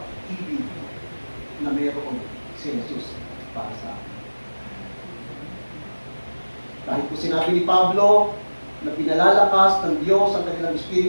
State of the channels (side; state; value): both; inverted; correlation -1.00